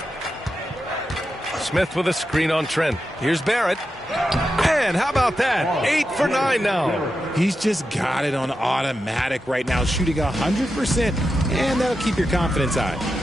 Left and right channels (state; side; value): normal; both; correlation 0.89